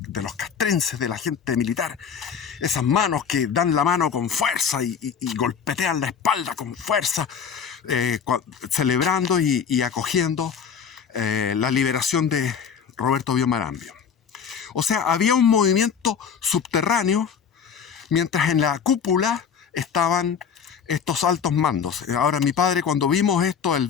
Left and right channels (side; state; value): right; quieter; 7.0 dB